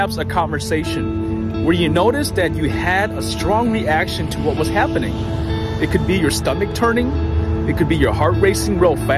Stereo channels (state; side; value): identical; both; correlation 1.00